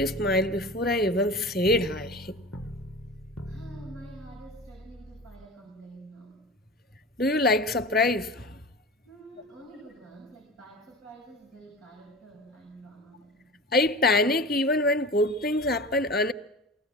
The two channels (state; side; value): normal; both; correlation 0.33